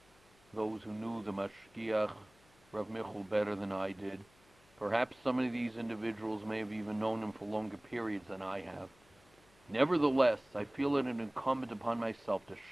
those who knew the Mashgiach, Rav Michal, better than I did. Perhaps some of these individuals may have even known him for longer periods than I have. Nevertheless, I feel it incumbent upon myself to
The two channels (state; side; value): noise; left; hum, 29 dB below the sound